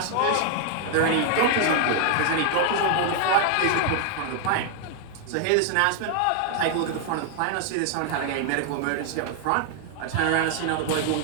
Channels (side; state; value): both; different; correlation 0.00